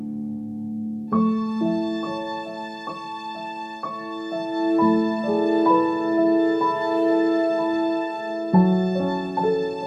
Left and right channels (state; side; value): identical; both; correlation 1.00